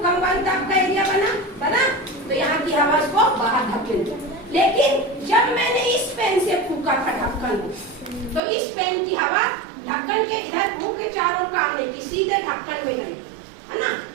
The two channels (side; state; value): left; drops out; at 8.4 s